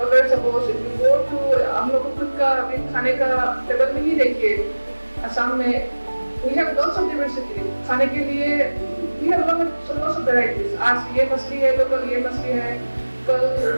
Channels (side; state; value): both; inverted; correlation -1.00